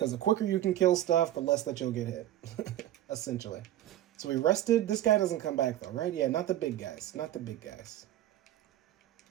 the quicker you can kill stuff, the less that you'll get hit, essentially. So we rested. This guy doesn't come back, though, right? Yeah, not the big guys. Not the big guys.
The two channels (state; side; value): quieter; left; 13.1 dB